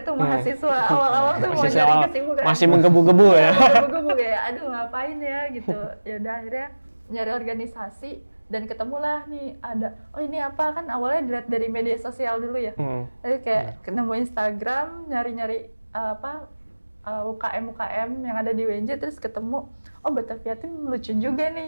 tuh mahasiswa awal-awal tuh mau nyari kesibukan. Masih menggebu-gebu ya. Menggebu-gebu kayak aduh ngapain ya gitu. Ya udah akhirnya nyari organisasi dan ketemulah nih ada ini apa kan awalnya dilihat dari media sosial dulu ya. Jadi kayak nemu Instagram nyari-nyari UKM yang ada di UNJ terus ketemu Batavia Team lucu juga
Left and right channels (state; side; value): inverted; both; correlation -1.00